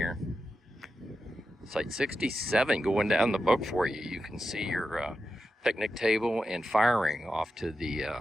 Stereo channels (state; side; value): normal; both; correlation 0.89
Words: Site 67 going down the book for you. You can see your picnic table and fire ring off to